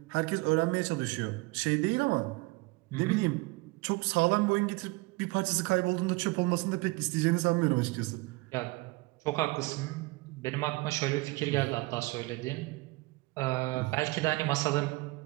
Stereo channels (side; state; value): left; quieter; 23.8 dB